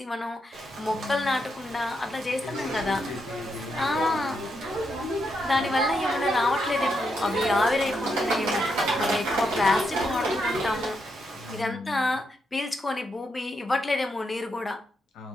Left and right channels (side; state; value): both; normal; correlation 0.81